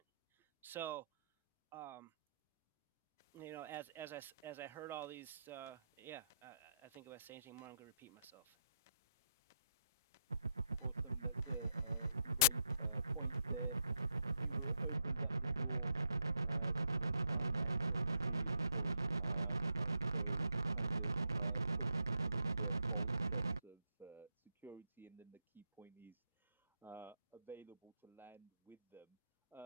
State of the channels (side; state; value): both; inverted; correlation -0.76